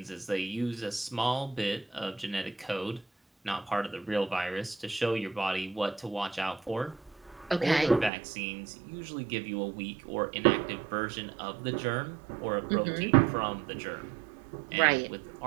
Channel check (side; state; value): left; drops out; at 8.1 s